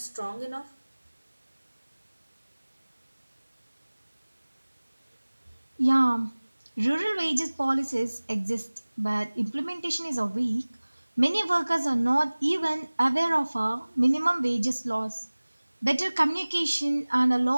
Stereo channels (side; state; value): both; inverted; correlation -1.00